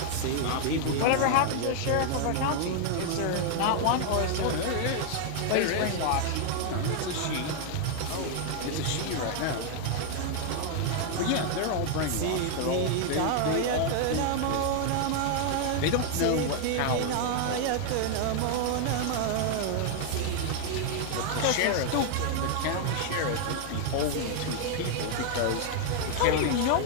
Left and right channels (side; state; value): both; different; correlation 0.00